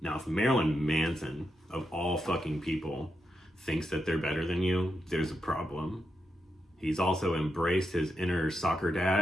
Now, if Marilyn Manson, of all fucking people, thinks that they're better than you, there's a problem. He's also embraced his inner soccer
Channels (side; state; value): both; normal; correlation 0.85